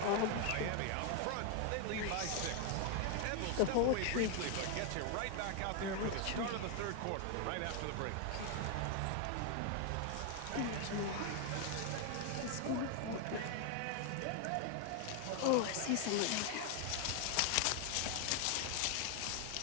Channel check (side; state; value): both; different; correlation 0.00